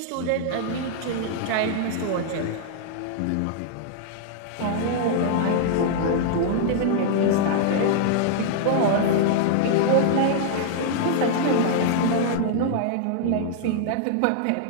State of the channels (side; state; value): both; different; correlation -0.01